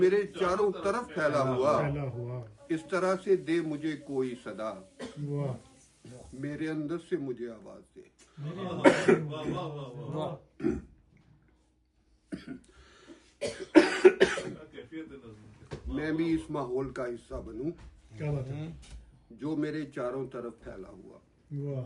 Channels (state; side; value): identical; both; correlation 1.00